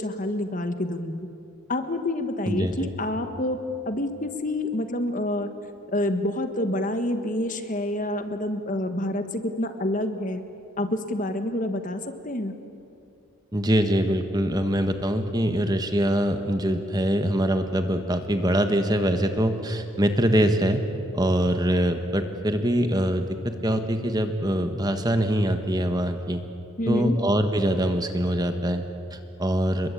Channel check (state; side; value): normal; both; correlation 0.73